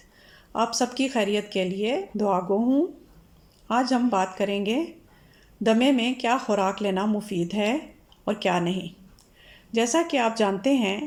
آپ سب کی خیریت کے لیے دعا گو ہوں۔ آج ہم بات کریں گے دمے میں کیا خوراک لینا مفید ہے اور کیا نہیں۔ جیسا کہ آپ جانتے ہیں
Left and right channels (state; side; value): identical; both; correlation 1.00